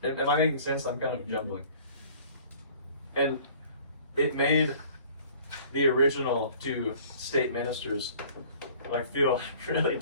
Am I making sense? I'm kind of jumbling. And it made the original two state ministers like feel really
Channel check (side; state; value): both; inverted; correlation -0.51